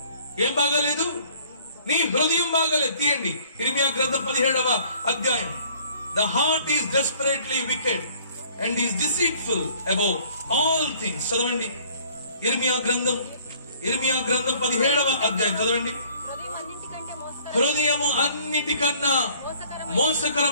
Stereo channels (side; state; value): both; inverted; correlation -0.57